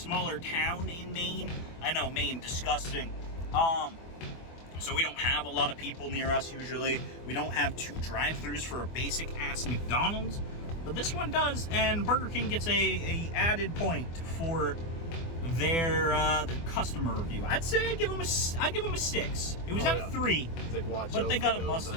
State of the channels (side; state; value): right; late; 24 ms